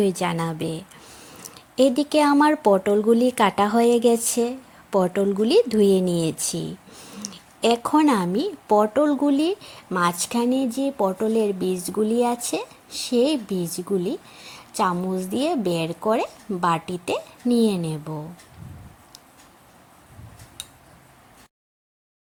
জানাবে। এদিকে আমার পটলগুলি কাটা হয়ে গেছে, পটলগুলি ধুয়ে নিয়েছি। এখন আমি পটলগুলি মাঝখানে যে পটলের বীজগুলি আছে সেই বীজগুলি চামচ দিয়ে বের করে বাটিতে নিয়ে নেব।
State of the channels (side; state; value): both; identical; correlation 1.00